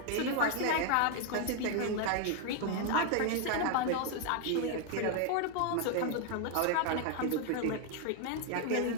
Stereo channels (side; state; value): both; different; correlation 0.01